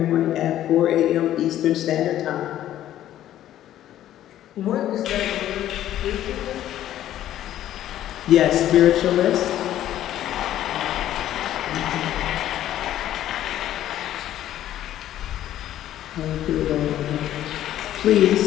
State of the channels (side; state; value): right; quieter; 12.4 dB